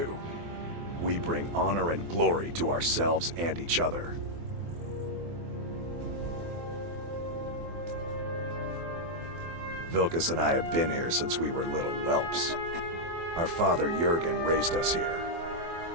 We bring honor and glory to ourselves and each other. Vilkas and I have been here since we were little whelps. Our father Jurgen raised us here.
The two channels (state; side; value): late; left; 24 ms